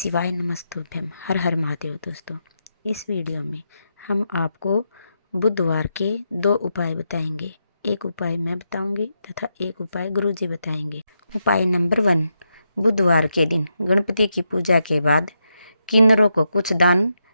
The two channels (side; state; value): both; inverted; correlation -0.83